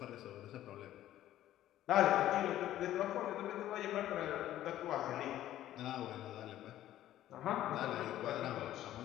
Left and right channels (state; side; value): quieter; right; 13.1 dB